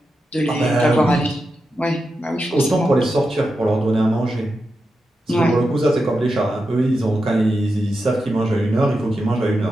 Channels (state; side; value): normal; both; correlation 0.88